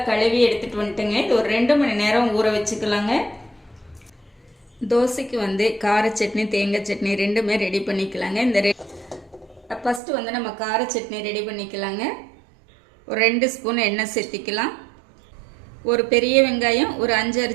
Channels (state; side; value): drops out; left; at 10.0 s